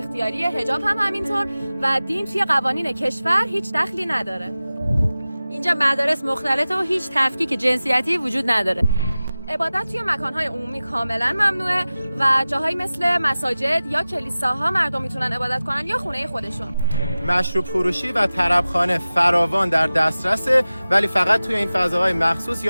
حجاب هم همینطور و دین توی قوانین کشور هیچ دخلی نداره. اینجا مدارس مختلطه و هیچ تفکیک جنسیتی وجود نداره. عبادت توی مکانهای عمومی کاملا ممنوعه و جاهایی مثل مساجد یا کلیساها مردم میتونن عبادت کنن یا خونه خودشون. مشروب فروشی و طربخانه فراوان در دسترسه، ولی فقط توی این فضاهای مخصوص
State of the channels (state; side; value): inverted; both; correlation -0.96